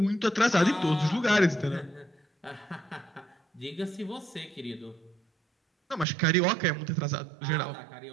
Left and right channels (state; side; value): drops out; left; at 6.1 s